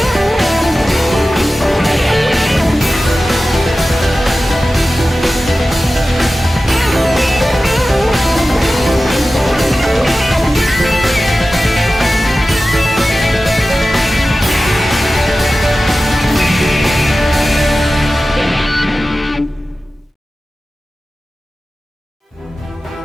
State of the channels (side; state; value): both; normal; correlation 0.95